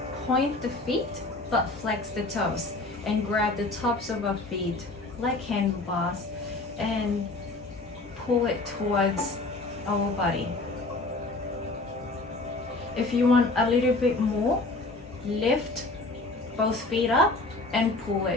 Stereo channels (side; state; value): right; quieter; 3.1 dB